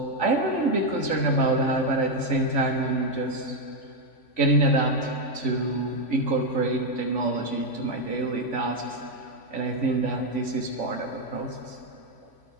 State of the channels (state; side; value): late; right; 3.5 ms